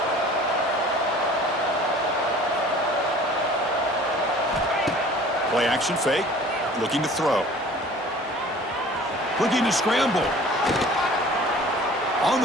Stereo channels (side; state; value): both; normal; correlation 0.47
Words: Play action fake. Looking to throw. Looking to scramble. On